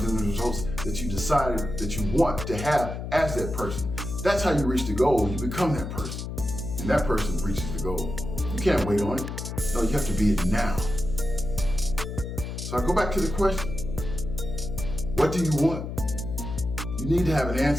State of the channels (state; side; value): noise; left; hum, 6 dB below the sound